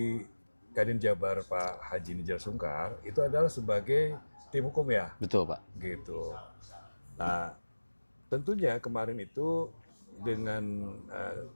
Kadin Jabar Pak Haji Nijar Sungkar itu adalah sebagai tim hukum, ya? Betul, Pak. Gitu. Nah, tentunya kemarin itu dengan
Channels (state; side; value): inverted; both; correlation -1.00